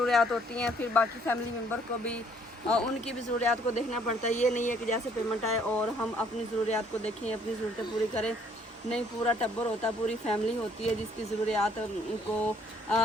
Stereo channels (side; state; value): both; normal; correlation 0.63